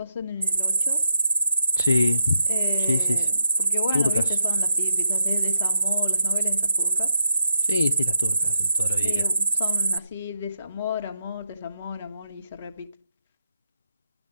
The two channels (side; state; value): both; inverted; correlation -0.82